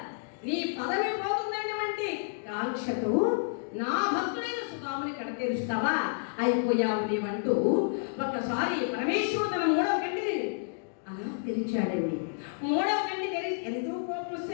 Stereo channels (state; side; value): silent; right; digital silence